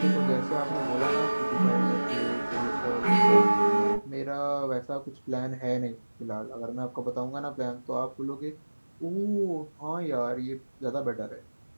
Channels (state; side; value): inverted; both; correlation -1.00